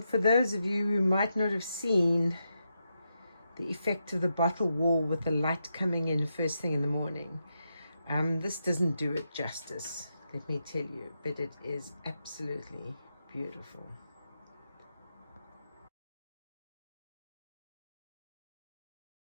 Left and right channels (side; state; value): both; inverted; correlation -0.85